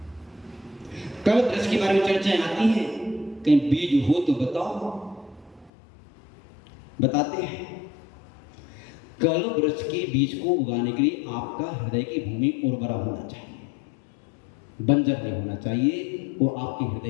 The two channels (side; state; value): right; drops out; at 5.7 s